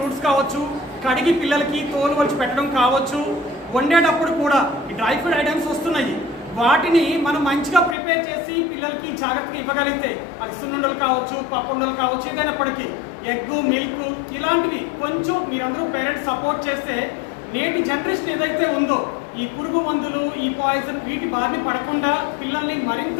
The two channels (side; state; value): right; drops out; at 8.0 s